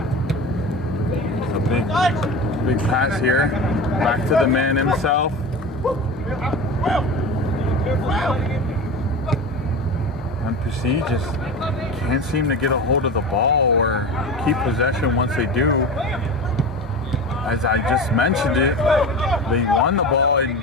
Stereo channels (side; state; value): both; normal; correlation 0.29